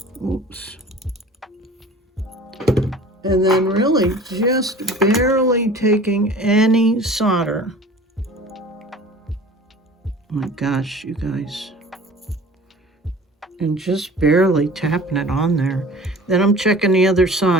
Oops. And then really just barely taking any solder. Oh my gosh, you guys. And just barely tapping it on there. Then I'm checking the other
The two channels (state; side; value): normal; both; correlation 0.43